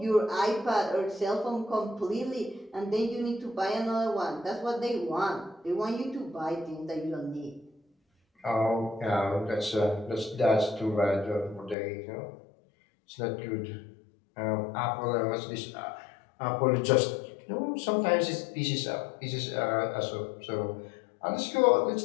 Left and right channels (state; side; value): drops out; right; at 11.8 s